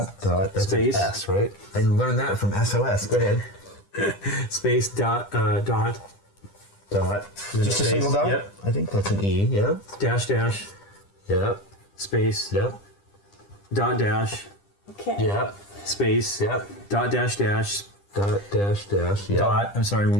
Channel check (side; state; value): right; late; 10 ms